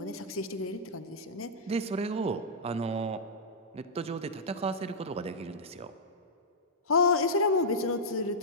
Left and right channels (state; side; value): normal; both; correlation -0.09